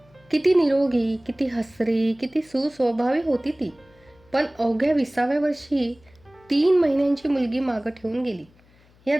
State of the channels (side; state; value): left; noise; hum, 30 dB below the sound